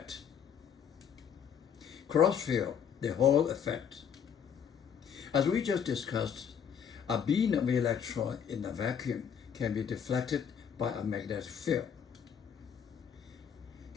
Crossfield, the Hall effect. As we just discussed, a beam of electron in a vacuum can be deflected by a magnetic field.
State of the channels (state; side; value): quieter; right; 7.8 dB